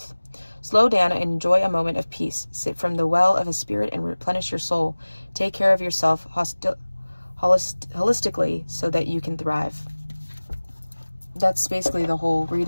Slow down and enjoy a moment of peace. Sip from the well of a spirit and replenish your soul. Take care of yourself holistically so that you can thrive. That's basically the whole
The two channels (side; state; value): both; inverted; correlation -1.00